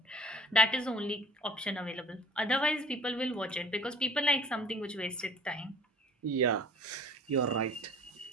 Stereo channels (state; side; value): normal; both; correlation 0.49